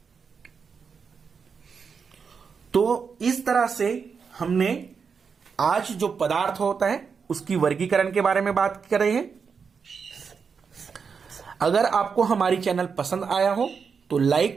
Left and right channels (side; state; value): left; quieter; 5.9 dB